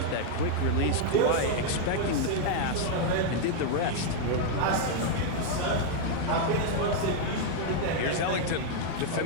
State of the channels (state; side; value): different; both; correlation 0.00